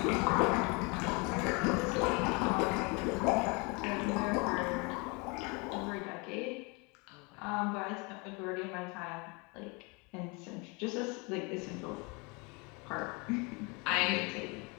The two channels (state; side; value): quieter; right; 29.6 dB